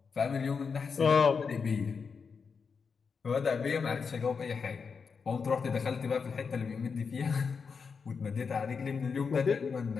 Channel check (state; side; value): quieter; right; 5.6 dB